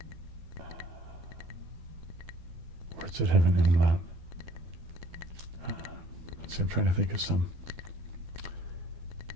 Words that have an umlaut. Let's see, I'm trying to think of some.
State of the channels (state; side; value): late; left; 12 ms